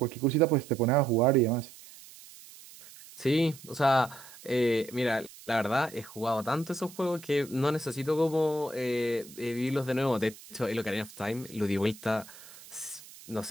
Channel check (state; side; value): noise; right; hiss, 19 dB below the sound